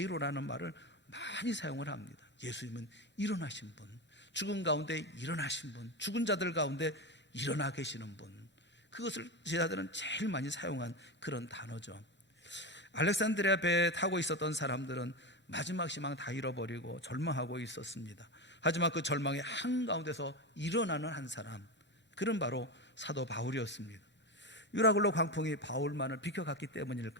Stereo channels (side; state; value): both; normal; correlation 0.18